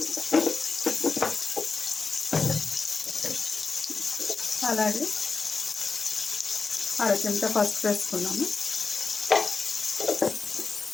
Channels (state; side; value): quieter; right; 4.5 dB